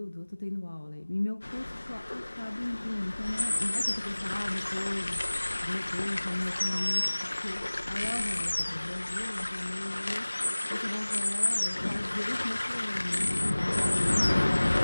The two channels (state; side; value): inverted; both; correlation -1.00